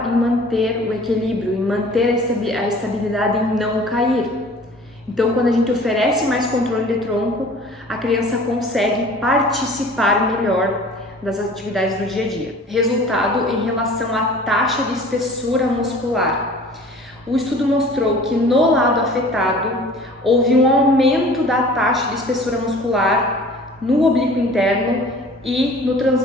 em manter o equilíbrio, em manter a estabilidade, em não cair. Então, quando a gente oferece mais controle de tronco, a criança consegue participar melhor das atividades do dia a dia. Resultado em relação à taxa de espessura muscular. O estudo mostrou que no lado afetado houve um aumento da taxa de espessura muscular no oblíquo interno e no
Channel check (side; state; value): both; normal; correlation 0.46